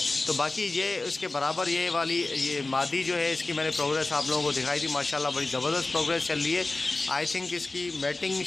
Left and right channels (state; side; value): quieter; right; 3.2 dB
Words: तो बाकी ये इसके बराबर ये मादी जो है इसकी मैंने प्रोग्रेस आप लोगों को दिखाई थी। माशाल्लाह बड़ी ज़बरदस्त प्रोग्रेस चल रही है। आई थिंक इसकी मैटिंग